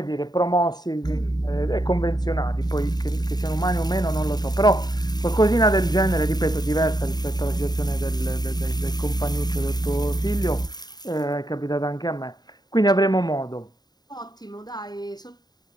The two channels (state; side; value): late; right; 0.20 ms